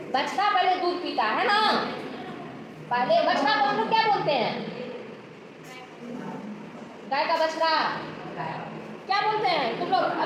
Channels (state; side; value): identical; both; correlation 1.00